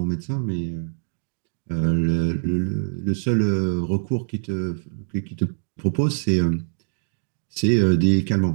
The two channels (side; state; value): left; silent; 63 dB below the other